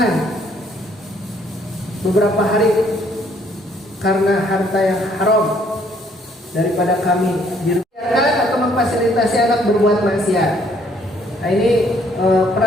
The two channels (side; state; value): both; normal; correlation 0.65